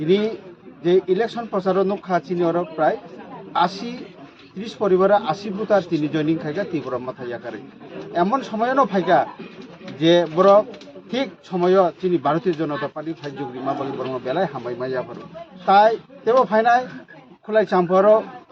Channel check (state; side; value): identical; both; correlation 1.00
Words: যে ইলেকশন প্রচার নখা চিনি ওর প্রায় ৩০ পরিবারে ৮০ বুথ আর তিনি জয়নিং খাইকা ত্রিপুরা মাথায় আকারে এমন সময়ও ফাইকা যে বড় ঠিক সময় তিনি ভারতীয় জনতা পার্টি ফাইজুগরি মাবলি বর্ম বেলায় হামাই মাইয়া পারো তাই তেও ফাইনাই খুলাই চাম্পার